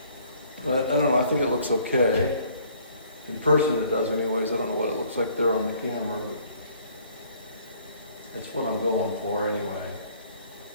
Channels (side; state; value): both; inverted; correlation -0.59